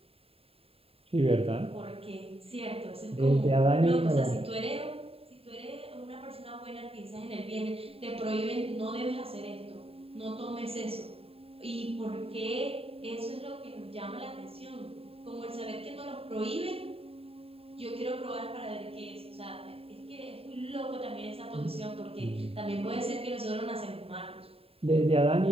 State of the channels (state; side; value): late; left; 0.28 ms